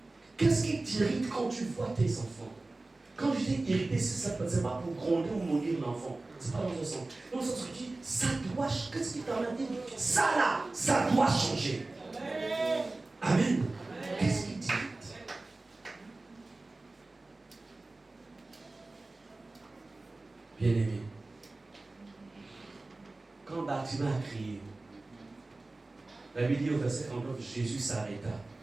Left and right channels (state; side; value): quieter; left; 3.1 dB